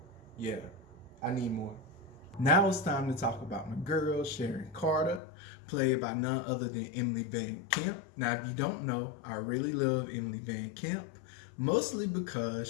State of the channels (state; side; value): drops out; right; at 5.2 s